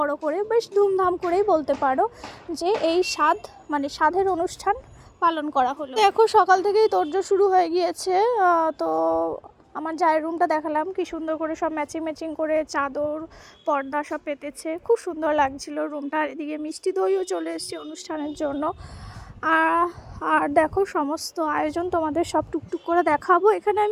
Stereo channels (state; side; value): identical; both; correlation 1.00